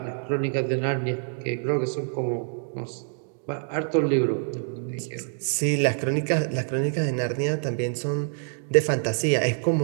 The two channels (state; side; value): silent; left; 61 dB below the other